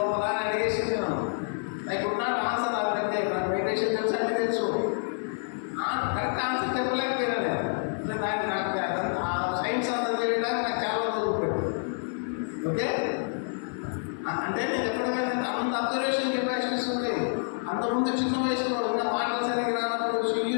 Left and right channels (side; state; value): right; silent; 59 dB below the other